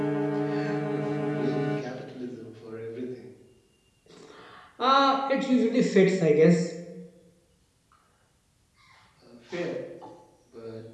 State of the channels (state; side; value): identical; both; correlation 1.00